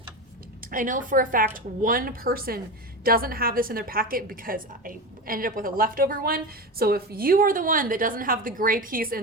I know for a fact one person doesn't have this in their packet because I ended up with a leftover one. So if you are the one that doesn't have the gray piece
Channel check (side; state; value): both; normal; correlation 0.22